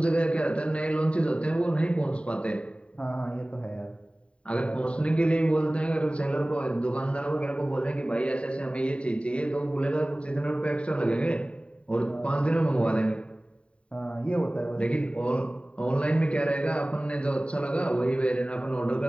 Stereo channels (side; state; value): right; late; 0.060 ms